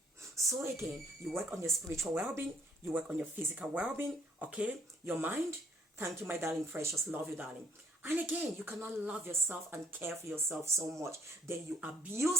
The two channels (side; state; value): both; normal; correlation 0.64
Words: So again, you work on your spiritual well-being, you work on your physical well-being, okay? Your mind. Thank you, my darling precious. Love you, darling. And again, you cannot love yourself and care for yourself so much. Then you